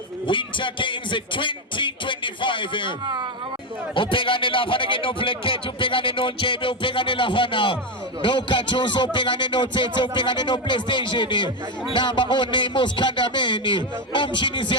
Winter Games 2025. Upegane lafana ke no plekete, upegane no njebe, upegane lafana no kachuso, upegane no tete, upegane no PlayStation. Namba one muskandameni, umshini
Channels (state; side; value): normal; both; correlation 0.09